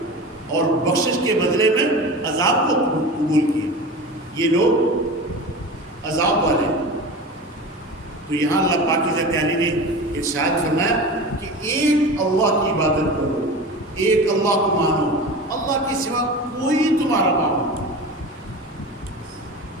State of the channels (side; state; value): both; normal; correlation 0.31